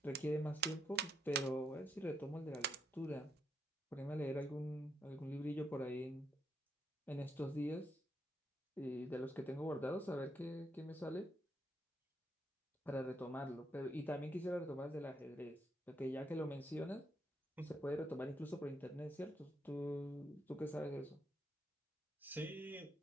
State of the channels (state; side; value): normal; both; correlation 0.78